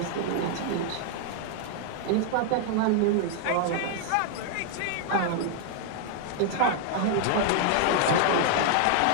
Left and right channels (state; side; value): different; both; correlation 0.00